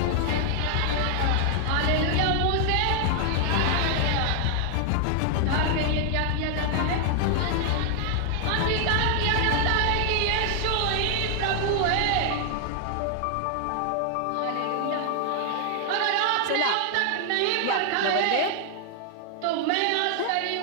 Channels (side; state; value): both; different; correlation 0.00